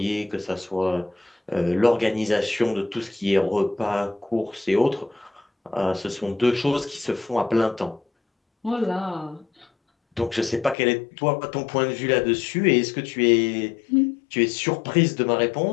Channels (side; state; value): right; drops out; at 10.8 s